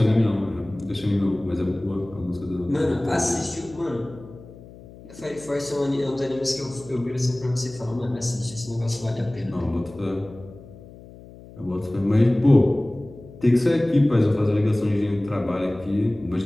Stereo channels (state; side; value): noise; left; hum, 19 dB below the sound